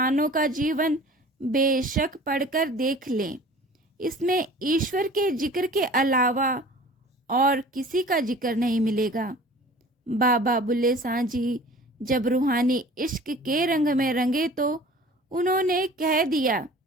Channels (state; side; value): normal; both; correlation 0.45